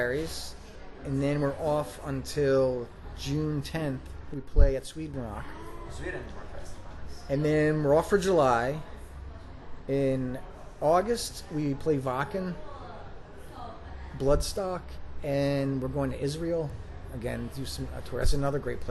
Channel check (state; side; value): identical; both; correlation 1.00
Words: and then we're off until June 10th. We play at Sweden Rock, Sweden Fest. and then we're off for July. In August, we play Wacken, Bloodstock, and we're going to Israel again. Do a tour. That's another great